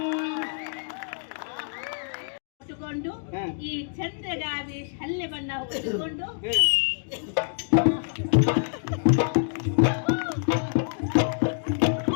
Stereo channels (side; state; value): right; silent; digital silence